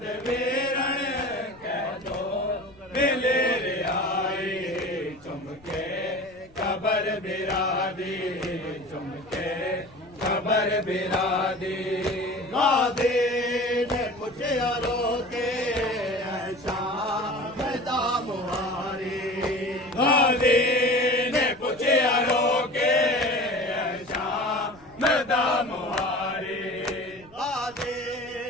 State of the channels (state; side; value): noise; left; rumble, 27 dB below the sound